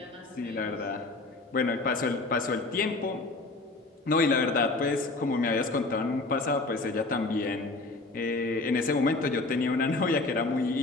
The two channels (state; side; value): quieter; right; 3.3 dB